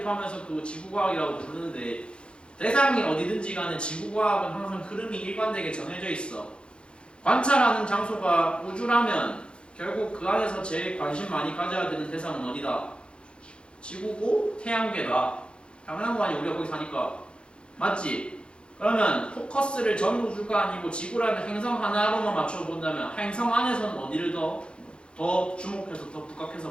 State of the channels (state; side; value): late; right; 0.055 ms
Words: 포함해서 그 지구과학이라고 부르는데 대상이 어디든지 간에 지구과학은 항상 흐름이 일관되게 정해져 있어. 관찰하는 장소가 우주라면 결국 그 안에서 제일 관심 많이 가져야 되는 대상은 어디다? 지구고 태양계다. 당연한 거 아니야. 우리가 거기 사니까. 맞지? 그러면 포커스를 전 우주가 아니고 지구라는 행성 하나로만 맞춰본다면 행성 안에서는 어디를 더 주목해서 더